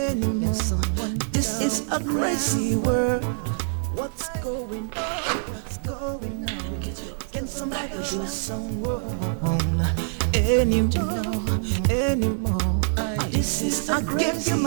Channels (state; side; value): silent; left; digital silence